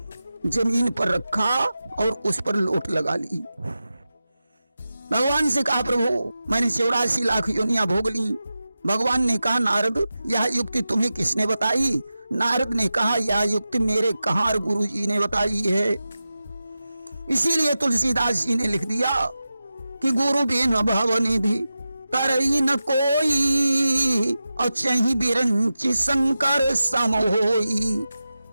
जमीन पर रखा और उस पर लोट लगा ली। भगवान से कहा, प्रभु मैंने 84 लाख योनियां भोग ली। भगवान ने कहा, नारद यह युक्ति तुम्हें किसने बताई? नारद ने कहा, यह युक्ति मेरे कहार गुरु जी ने बताई है। इसीलिए तुलसीदास जी ने लिख दिया कि गुरु बिन भव निधि तरई न कोई, और चही बिरंची शंकर सम होई।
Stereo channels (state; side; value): inverted; both; correlation -0.93